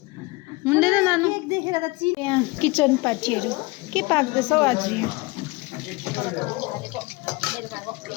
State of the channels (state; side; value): quieter; right; 23.5 dB